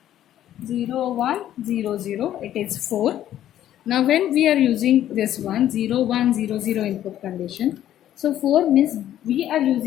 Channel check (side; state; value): right; quieter; 11.9 dB